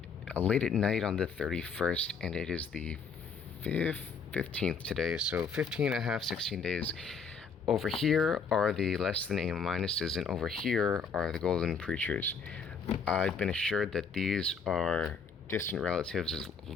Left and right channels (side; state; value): right; quieter; 5.3 dB